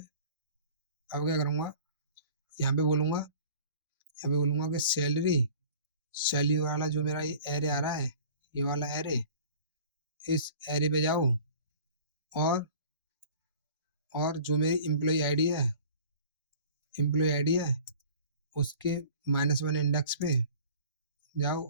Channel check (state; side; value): inverted; both; correlation -0.46